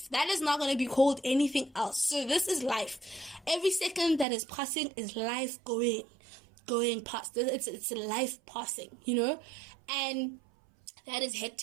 That is not going to be called anything else. So this is life. Every second that is passing is life going past. It's life passing, and that is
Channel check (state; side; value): drops out; left; at 4.2 s